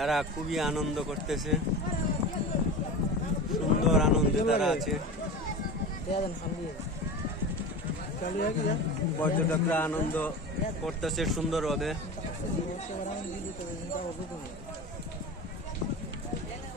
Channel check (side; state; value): both; normal; correlation 0.29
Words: খুবই আনন্দ করতেছে, সুন্দর আনন্দে তারা আছে। পর্যটকরা আনন্দ করতেছে সুন্দরভাবে।